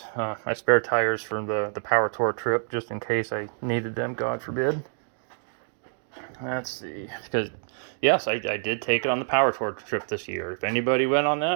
My spare tires from the power tour trip, just in case I needed them, God forbid. Let's see, because yes, I did take it on the power tour trip this year. If anybody went on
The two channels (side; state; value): left; silent; 60 dB below the other